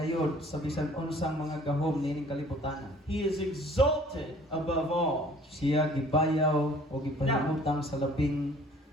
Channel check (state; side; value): normal; both; correlation 0.53